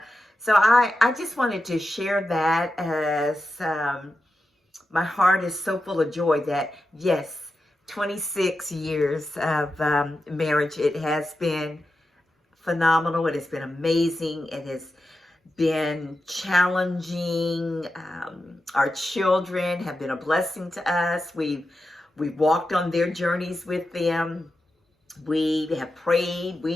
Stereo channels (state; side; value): normal; both; correlation 0.90